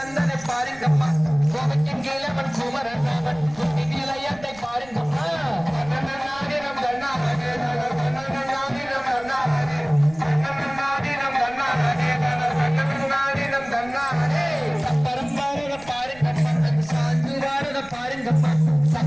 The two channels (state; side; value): noise; right; rumble, 22 dB below the sound